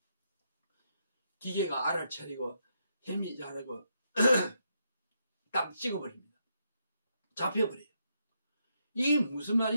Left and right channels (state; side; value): inverted; both; correlation -0.80